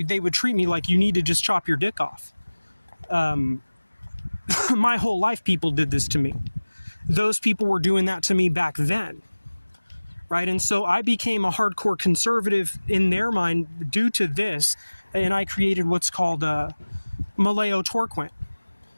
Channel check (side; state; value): both; inverted; correlation -1.00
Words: me like, you need to just chop your dick off. My whole life, people did this to me. Those people were doing that to me back then. Right? And so I became a hardcore conservative in their mind due to this. And I created what's called Maleo Torquent.